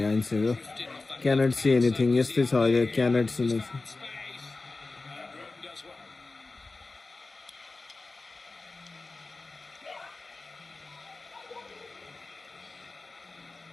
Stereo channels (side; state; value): right; quieter; 3.5 dB